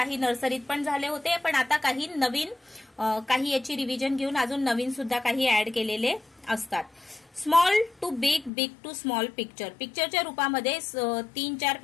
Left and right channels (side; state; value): right; drops out; at 8.5 s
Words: नर्सरीत पण झाले होते, पण आता काही नवीन काही याची रिव्हिजन घेऊन अजून नवीन सुद्धा काही ऍड केलेले असतात. Small to big, big to small picture. पिक्चरच्या रूपामध्ये 3-4